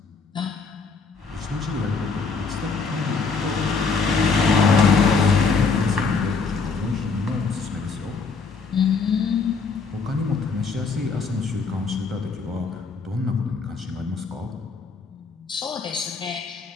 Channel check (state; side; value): quieter; right; 4.8 dB